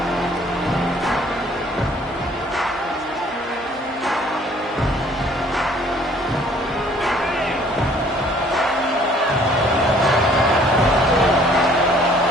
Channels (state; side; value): normal; both; correlation 0.58